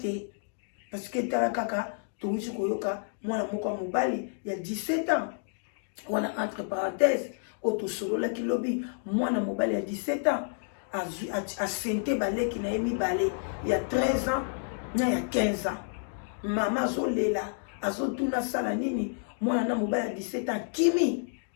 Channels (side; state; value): right; silent; digital silence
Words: parce que tala kaka touti koyoka mwana moko mobali ya 17 ans wana entre parenthèses otosololaki lobi mwana mobali ya 17 ans asente baleki na ye mibale ya 13 ans na ya 15 ans mama azolela azotuna sala nini mwana na mobali ya 17 ans